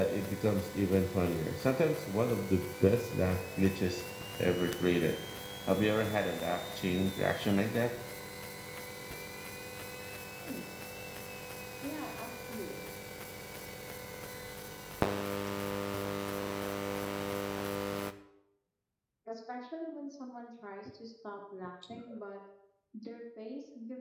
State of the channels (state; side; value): identical; both; correlation 1.00